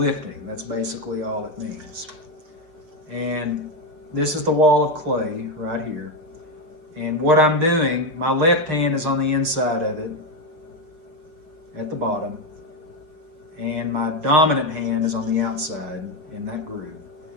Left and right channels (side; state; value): left; late; 6.2 ms